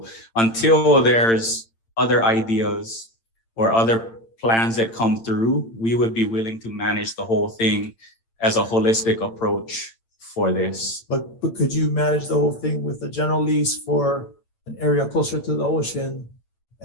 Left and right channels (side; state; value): right; late; 8.8 ms